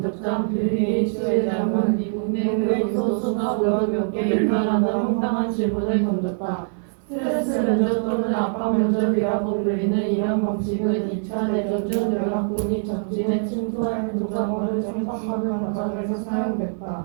빌 게이츠 회장은 미국의 교수수업을 몇 개 이탈하는 황당한 질문을 던졌다. 스트레스 면접 또는 압박 면접이라고 불리는 이런 방식은 2차 대전 중 연합군이 적진에 침투할 군사권을 침범하는 과정에서 사용됐다.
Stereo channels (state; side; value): silent; left; 61 dB below the other